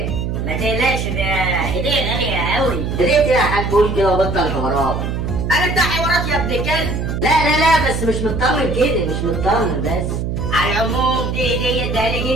ما تقلقش، ده هديه غاليه قوي. هديه ايه يا حاج؟ قول كده وبطل حوارات. انا بتاع حوارات يا ابن الكلب. لا بس مش مطمن كده، مش مطمن بس. على العموم دي هديه اديها لي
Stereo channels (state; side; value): noise; right; hum, 2 dB below the sound